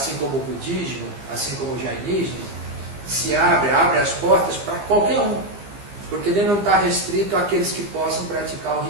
como o budismo, assim como o jainismo, se abre as portas para qualquer um, porque ele não está restrito àqueles que possam praticar o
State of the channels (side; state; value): left; late; 15 ms